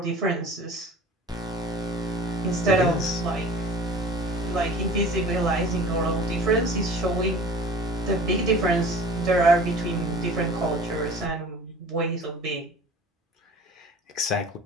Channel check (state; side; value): normal; both; correlation 0.43